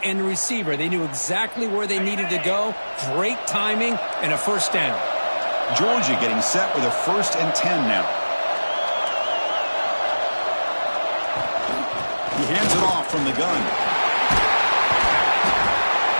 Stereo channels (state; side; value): inverted; both; correlation -1.00